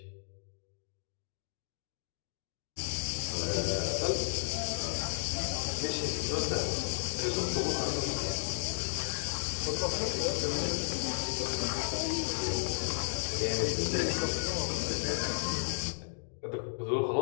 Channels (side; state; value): right; silent; digital silence